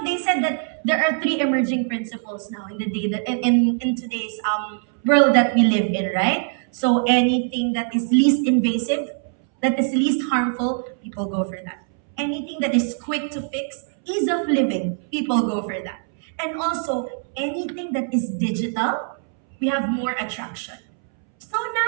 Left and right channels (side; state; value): left; silent; 64 dB below the other